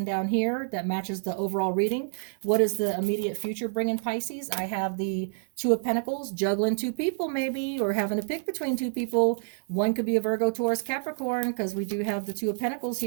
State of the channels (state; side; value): silent; left; digital silence